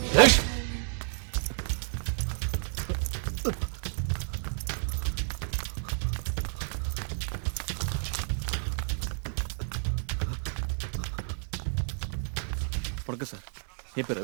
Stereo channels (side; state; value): left; silent; digital silence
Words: வணக்கம் சார், என் பேர்